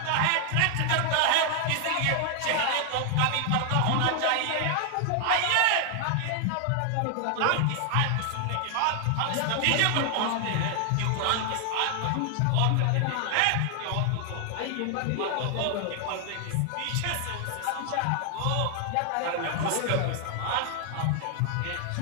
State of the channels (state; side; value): different; both; correlation 0.00